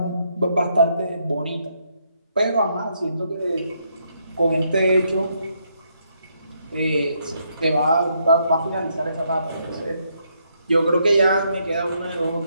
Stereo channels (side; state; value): both; inverted; correlation -0.75